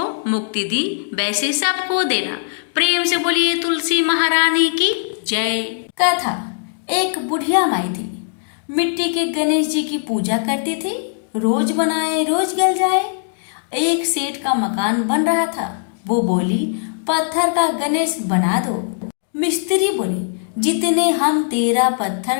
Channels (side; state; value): right; silent; digital silence